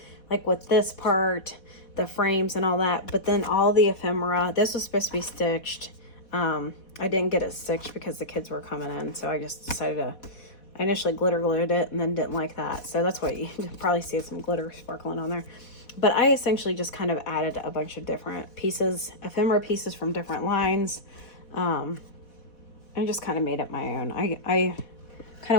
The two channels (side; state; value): right; late; 4.2 ms